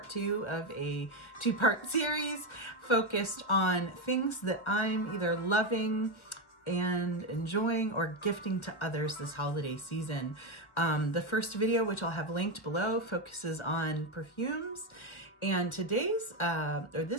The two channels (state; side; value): late; right; 1.4 ms